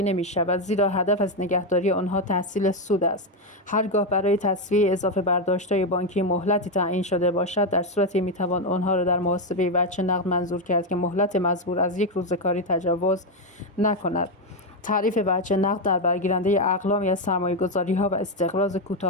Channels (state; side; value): normal; both; correlation 0.06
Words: نمی‌شود، زیرا هدف از نگهداری آنها تحصیل سود است. هرگاه برای تسویه اضافه برداشت‌های بانکی مهلتی تعیین شده باشد، در صورتی می‌توان آنها را در محاسبه وجه نقد منظور کرد که مهلت مزبور از 1 روز کاری تجاوز نکند. تعریف وجه نقد در برگیرنده اقلامی از سرمایه‌گذاری‌ها و استقراض